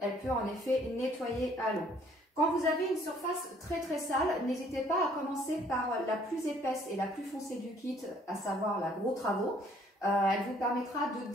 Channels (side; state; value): both; normal; correlation 0.61